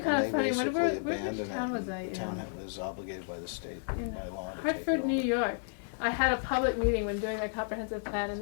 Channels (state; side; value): silent; right; 56 dB below the other